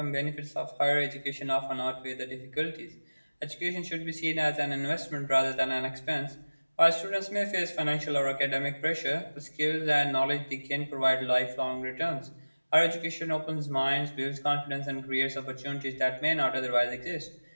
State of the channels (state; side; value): inverted; both; correlation -1.00